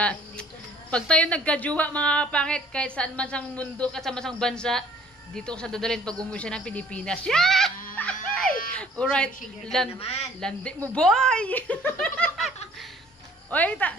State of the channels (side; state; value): both; normal; correlation 0.55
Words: pag tayo nagkajuwa mga kapangit, kahit saan man sang mundo, at saan man sang bansa, dito ko sa dadalhin pag umuwi siya ng Pilipinas. Yeah! Alright, landi mo boy! Oy,